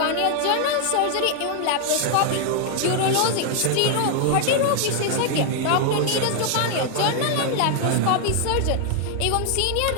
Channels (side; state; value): both; different; correlation 0.00